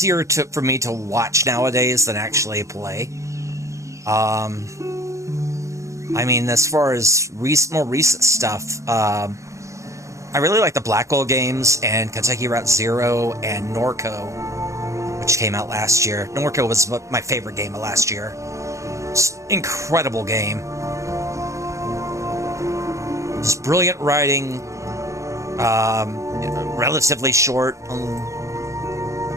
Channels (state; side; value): late; left; 0.15 ms